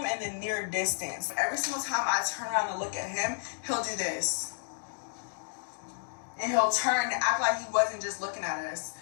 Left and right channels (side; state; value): right; silent; digital silence